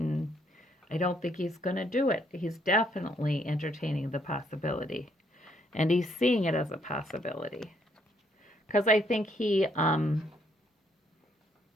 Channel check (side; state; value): both; normal; correlation 0.70